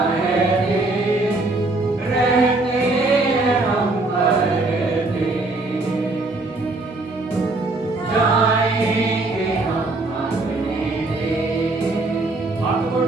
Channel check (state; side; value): quieter; left; 3.1 dB